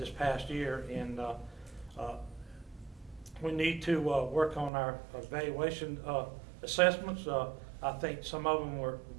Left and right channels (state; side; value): drops out; left; at 4.7 s